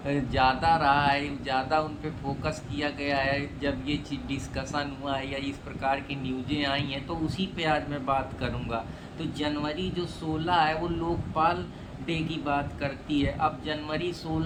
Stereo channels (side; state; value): both; identical; correlation 1.00